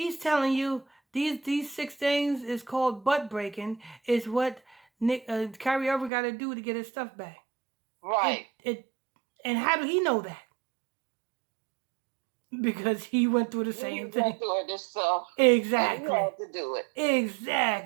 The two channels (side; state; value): left; drops out; at 6.1 s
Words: telling you these six things is called butt breaking. Is what Kyrie Irving got to do to get his stuff back. Right. It and how do he know that? Because he went through the He same went thing. through it himself, and he Exactly. had to do it.